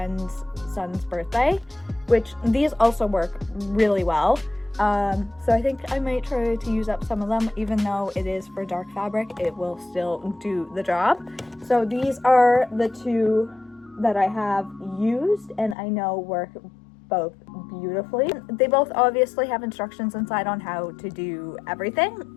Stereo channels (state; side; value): drops out; right; at 15.8 s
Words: son's birthday, which these also work really well. So I think I might try to use up some of them. Even though it is for dark fabric, it will still do the job. So these are the two that I have used and I know work both beautifully. They both obviously have instructions inside on how to do